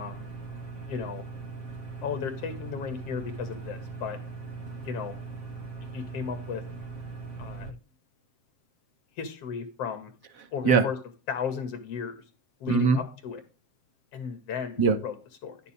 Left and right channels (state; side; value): late; right; 7.6 ms